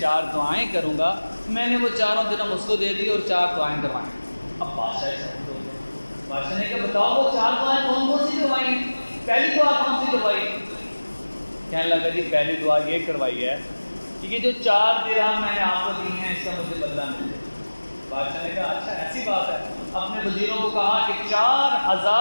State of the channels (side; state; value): both; inverted; correlation -1.00